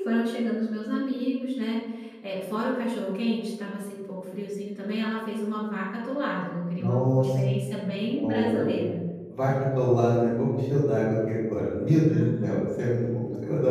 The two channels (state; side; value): identical; both; correlation 1.00